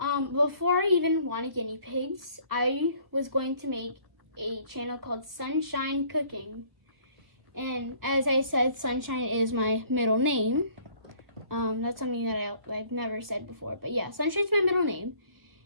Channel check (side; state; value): left; late; 1.2 ms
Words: I even wanted guinea pigs, I was going to make a channel called Sunshine Cooking. And as I said, Sunshine is my middle name. That's something that I've never said before. But yeah, Sunshine's my middle name.